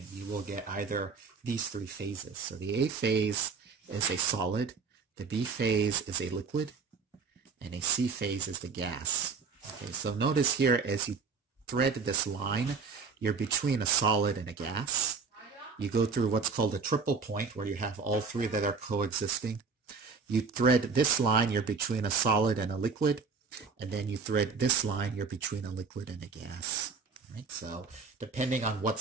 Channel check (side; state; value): left; quieter; 4.9 dB